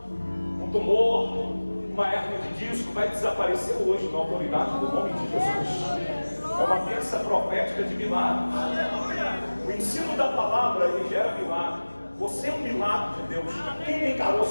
um tumor, uma hérnia de disco. Vai desaparecer hoje na autoridade do nome de Jesus. É uma terça profética de milagre. O ensino da palavra, ele gera milagre. Você é um milagre de Deus. Quem tem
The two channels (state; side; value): inverted; both; correlation -1.00